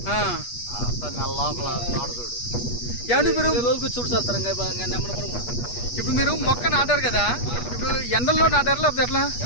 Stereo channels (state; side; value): late; right; 8.3 ms